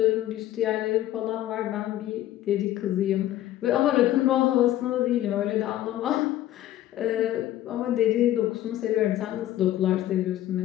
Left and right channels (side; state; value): right; quieter; 13.6 dB